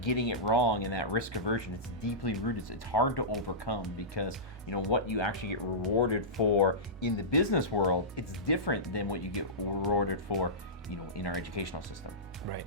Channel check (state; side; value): normal; both; correlation -0.18